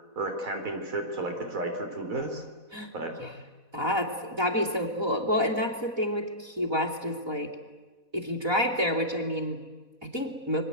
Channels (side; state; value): left; late; 4.1 ms